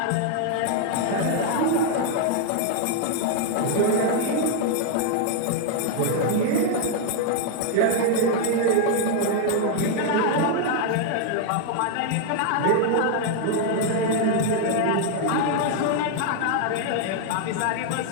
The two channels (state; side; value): different; both; correlation 0.00